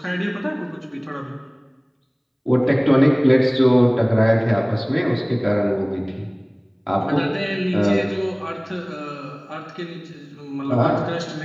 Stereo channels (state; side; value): identical; both; correlation 1.00